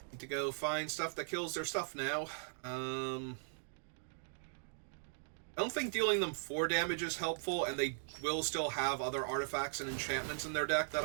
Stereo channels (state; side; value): silent; left; digital silence